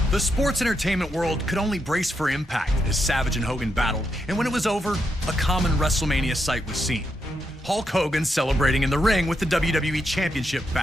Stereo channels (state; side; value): normal; both; correlation 0.82